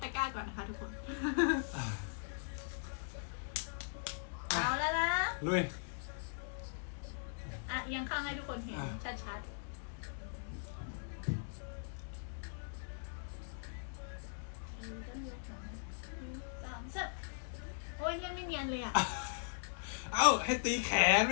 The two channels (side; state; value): right; silent; digital silence